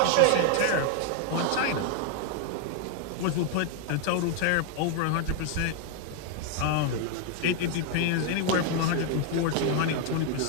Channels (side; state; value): both; different; correlation 0.00